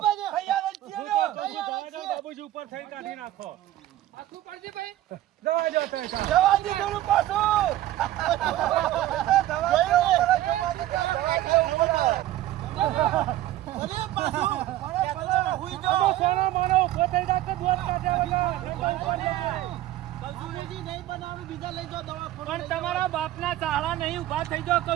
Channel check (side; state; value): left; quieter; 14.5 dB